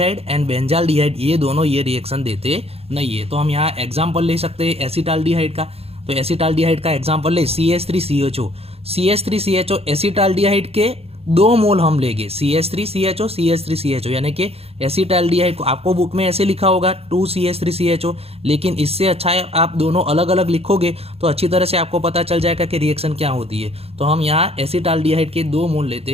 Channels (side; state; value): left; late; 0.29 ms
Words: and benzaldehyde ये दोनों ये रिएक्शन देते नहीं है। तो हम यहाँ एग्जाम्पल ले सकते हैं एसिटाल्डिहाइड का। तो एसिटाल्डिहाइड का एग्जाम्पल ले CH3CHO, CH3CHO एसिटाल्डिहाइड के 2 मोल हम लेंगे CH3CHO CH3CHO यानी कि एसिटाल्डिहाइड को आपको बुक में ऐसे लिखा होगा 2CH3CHO, लेकिन इससे अच्छा है आप दोनों अलग अलग लिखोगे तो अच्छी तरह से आपको पता चल जाएगा कि रिएक्शन क्या होती है। तो हम यहाँ एसिटाल्डिहाइड के 2 मोल